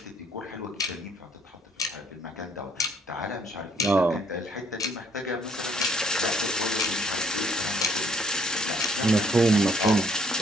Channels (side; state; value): both; normal; correlation 0.64